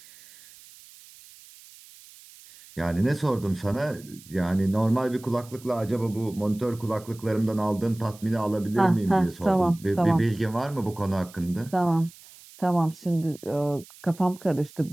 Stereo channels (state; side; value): noise; right; hiss, 22 dB below the sound